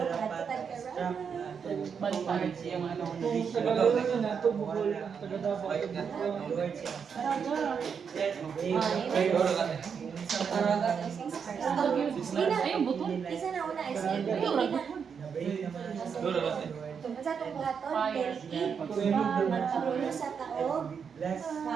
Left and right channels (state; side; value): quieter; left; 6.6 dB